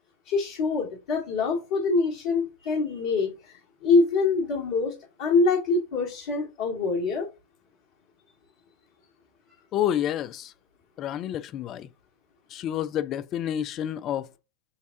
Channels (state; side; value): quieter; right; 4.4 dB